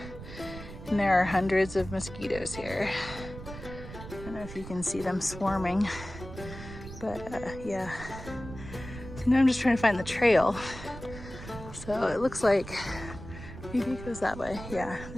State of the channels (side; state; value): right; noise; rumble, 12 dB below the sound